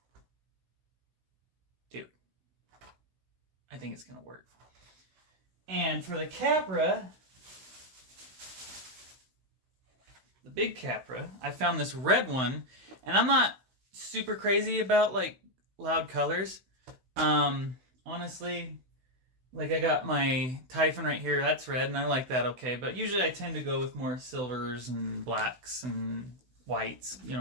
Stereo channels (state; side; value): late; left; 16 ms